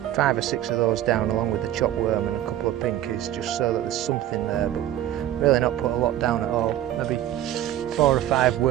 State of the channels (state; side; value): quieter; left; 12.5 dB